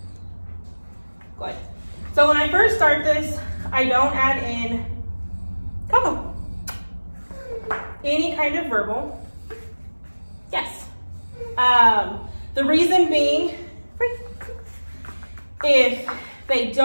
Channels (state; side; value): inverted; both; correlation -1.00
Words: Good. So when I first start this, I don't add in CoCo. Any kind of verbal. Yes. The reason being, if they